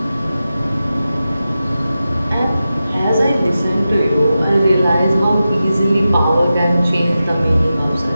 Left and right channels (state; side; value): inverted; both; correlation -0.92